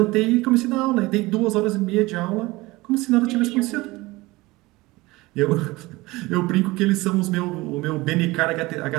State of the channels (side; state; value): left; quieter; 21.1 dB